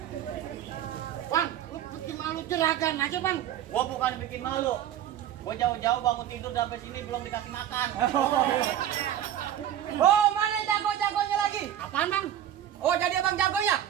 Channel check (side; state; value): left; quieter; 11.0 dB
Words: Bang, lu bikin malu jeragan aja, Bang. gua bukan bikin malu. Gua jauh-jauh bangun tidur sampai sini belum dikasih makan. Oh, mana jago-jagonya lagi? Apaan, Bang? Oh, jadi abang jagonya?